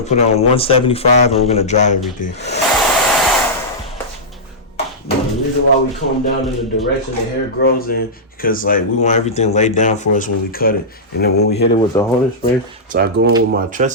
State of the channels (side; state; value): both; normal; correlation -0.12